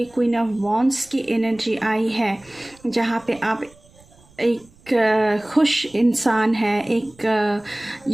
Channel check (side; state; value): right; noise; rumble, 28 dB below the sound